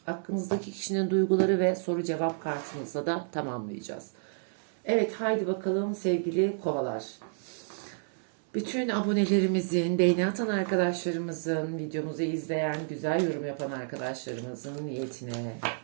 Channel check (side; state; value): left; silent; 58 dB below the other